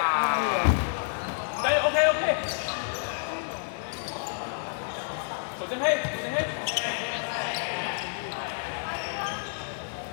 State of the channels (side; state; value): right; silent; digital silence